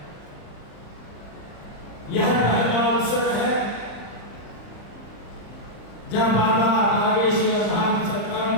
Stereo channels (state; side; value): late; right; 35 ms